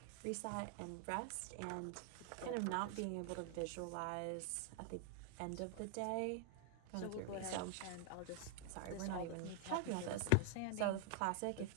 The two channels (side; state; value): both; different; correlation 0.00